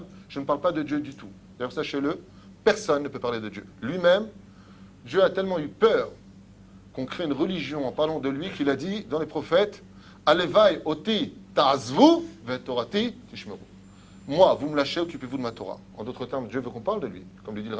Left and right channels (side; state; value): both; identical; correlation 1.00